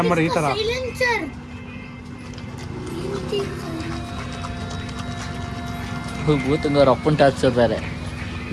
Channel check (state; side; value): identical; both; correlation 1.00